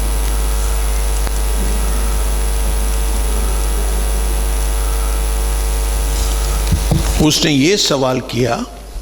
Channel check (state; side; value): identical; both; correlation 1.00